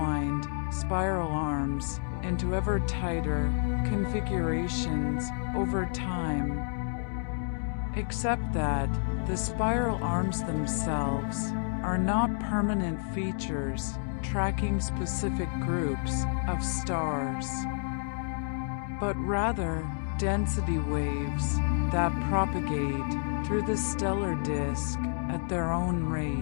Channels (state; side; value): silent; right; digital silence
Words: spiral arms into ever tighter configurations over time, except that the spiral arms themselves are not permanent features tracking specific groups of stars, but rather density waves that propagate through the stellar disk at their own